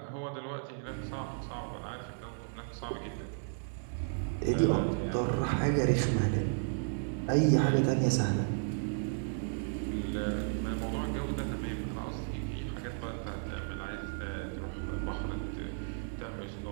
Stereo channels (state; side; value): silent; left; 55 dB below the other